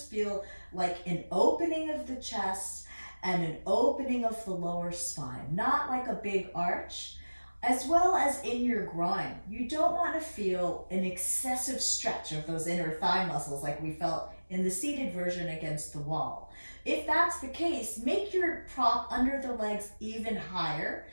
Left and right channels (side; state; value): both; inverted; correlation -1.00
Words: feel like an opening of the chest and an opening of the lower spine, not like a big arch. as well as in your groin. You don't want to feel an excessive stretch of those inner thigh muscles like we felt in the seated version against the wall. If that's the case, make your prop under the legs even higher.